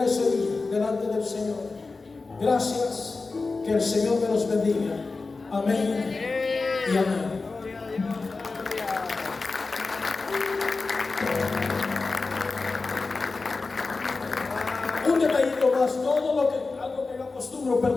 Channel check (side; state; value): right; quieter; 3.9 dB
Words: ese día delante del Señor. Gracias, que el Señor me los bendiga. Amén y amén. Un detallito más, algo que yo acostumbro,